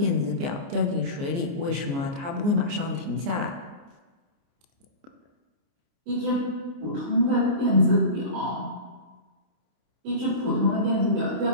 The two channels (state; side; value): late; left; 29 ms